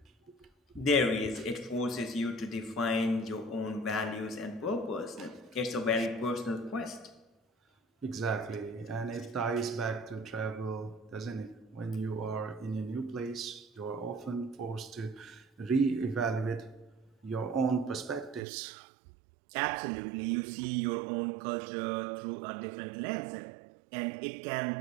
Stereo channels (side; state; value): left; drops out; at 18.4 s